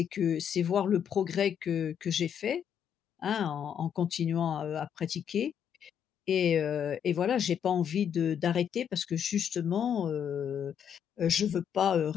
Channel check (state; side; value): quieter; right; 8.5 dB